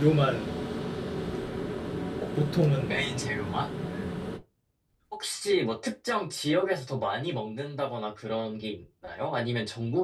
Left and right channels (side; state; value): both; identical; correlation 1.00